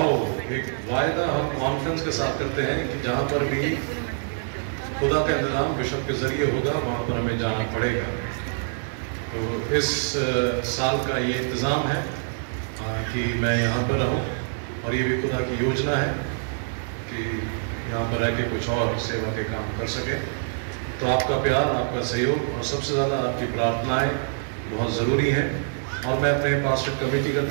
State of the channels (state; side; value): silent; left; digital silence